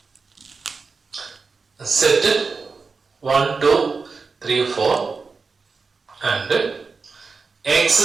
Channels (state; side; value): quieter; left; 4.6 dB